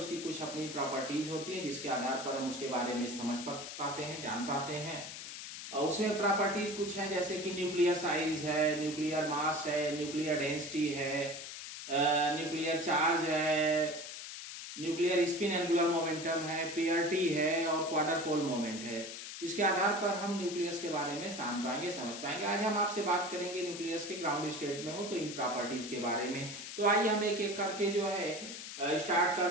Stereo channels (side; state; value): left; noise; hiss, 9 dB below the sound